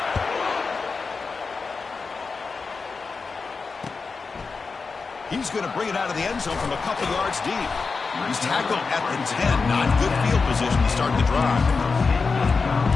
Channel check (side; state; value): right; quieter; 4.6 dB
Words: He's going to bring it out of the end zone from a couple yards deep. He's tackled at the 10. Not good field position to start the drive.